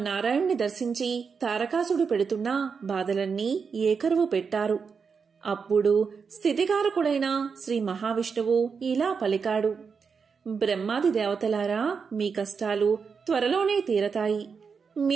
దర్శించి తారకాసుడు పెడుతున్న బాధలన్నీ ఏకరువు పెట్టారు. అప్పుడు స్థితికారకుడైన శ్రీ మహావిష్ణువు ఇలా పలికాడు: బ్రహ్మాది దేవతలారా, మీ కష్టాలు త్వరలోనే తీరతాయి.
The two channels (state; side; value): quieter; left; 5.7 dB